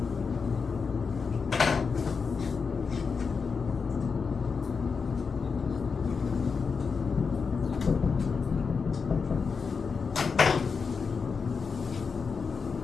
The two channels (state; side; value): quieter; right; 5.3 dB